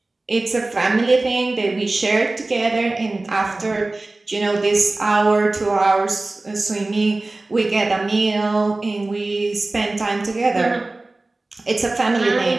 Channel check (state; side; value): quieter; left; 3.0 dB